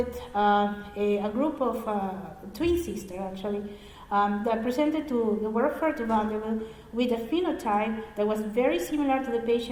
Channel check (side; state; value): both; identical; correlation 1.00